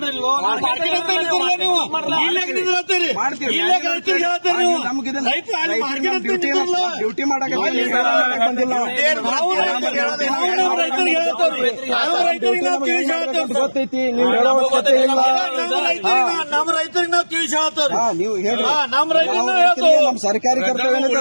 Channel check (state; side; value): inverted; both; correlation -1.00